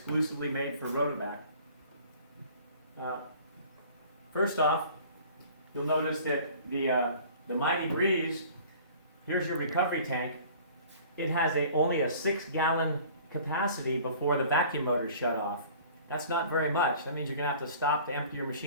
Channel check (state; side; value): inverted; both; correlation -0.48